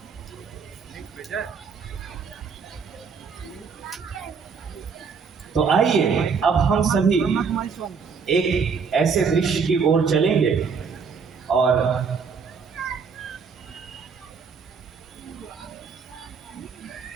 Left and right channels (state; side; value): quieter; left; 5.7 dB